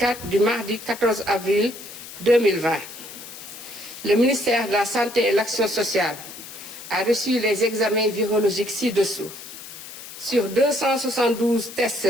du mardi 14 avril 2020. Le ministère de la Santé et de l'Action sociale a reçu les examens virologiques ci-dessous. Sur 272 tests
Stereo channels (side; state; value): left; noise; hiss, 14 dB below the sound